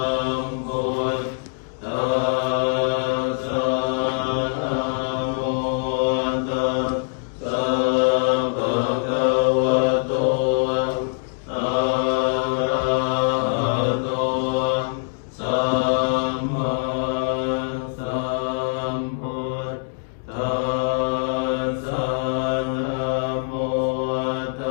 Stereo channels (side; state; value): right; silent; digital silence